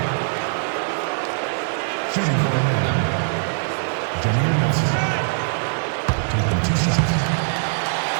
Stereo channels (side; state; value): left; silent; 63 dB below the other